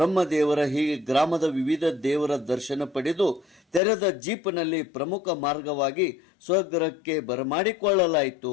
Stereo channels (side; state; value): right; drops out; at 3.8 s